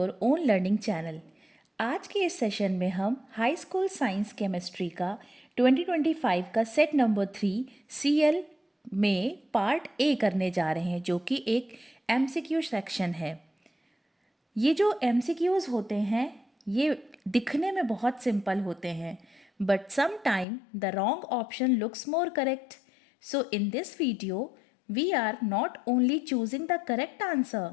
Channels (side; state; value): right; drops out; at 20.5 s